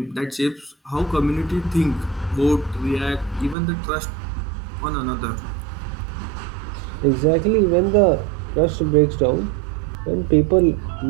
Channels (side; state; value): left; drops out; at 3.6 s